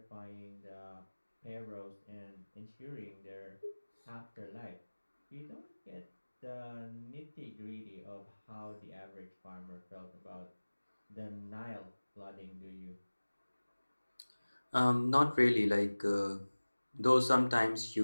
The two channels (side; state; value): both; inverted; correlation -1.00